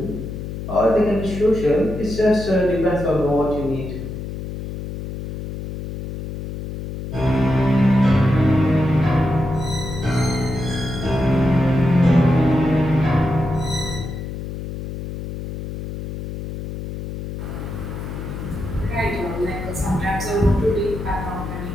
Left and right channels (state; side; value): noise; left; hum, 8 dB below the sound